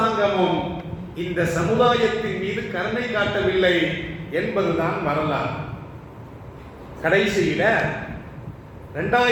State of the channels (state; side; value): identical; both; correlation 1.00